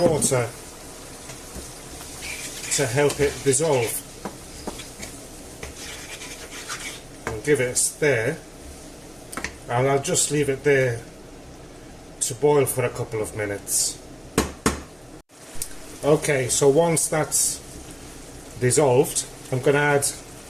water to help it dissolve, and give it a stir, and I'll just leave it there to boil for a couple of minutes. Okay, so once that's dissolved, I'm going to add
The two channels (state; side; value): identical; both; correlation 1.00